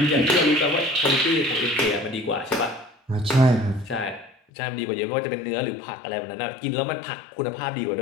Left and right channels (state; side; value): drops out; right; at 4.4 s